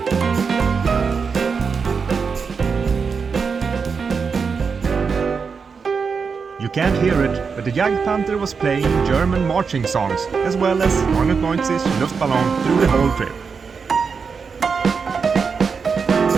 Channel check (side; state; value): left; quieter; 5.5 dB